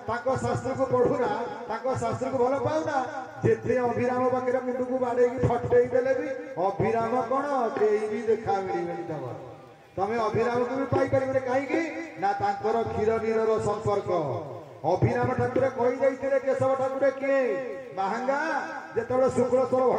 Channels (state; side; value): identical; both; correlation 1.00